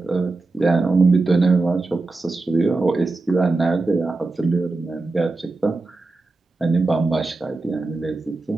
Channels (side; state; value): left; quieter; 3.4 dB